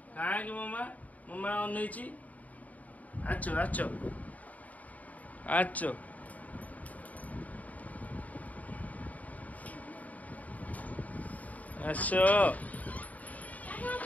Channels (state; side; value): late; right; 0.073 ms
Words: काहे कि मामा मामा अनैची आचो आचो आचो आसो